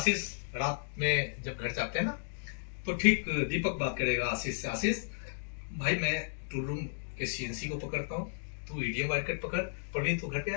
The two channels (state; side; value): silent; right; digital silence